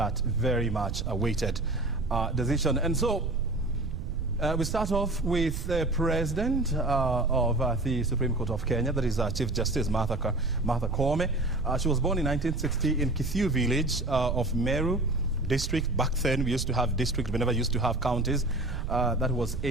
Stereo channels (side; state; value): right; noise; rumble, 5 dB below the sound